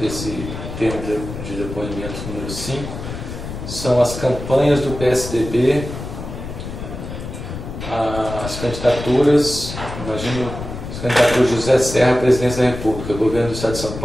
termo de depoimento número 5 são as campanhas do PSDB, as candidaturas, imagino, as candidaturas de José Serra à presidência da República, governo do Estado de São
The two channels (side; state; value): left; noise; rumble, 9 dB below the sound